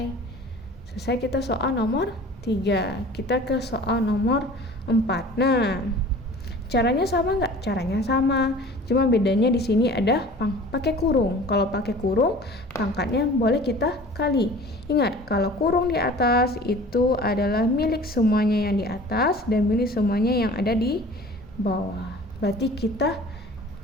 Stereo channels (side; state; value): both; normal; correlation 0.44